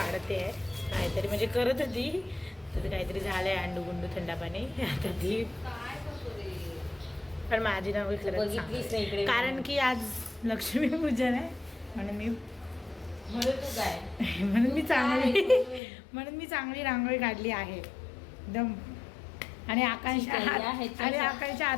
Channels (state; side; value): drops out; right; at 15.8 s